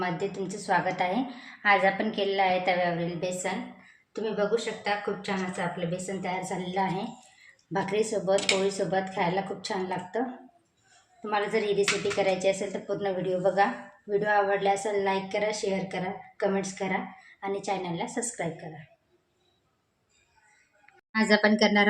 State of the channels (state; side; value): identical; both; correlation 1.00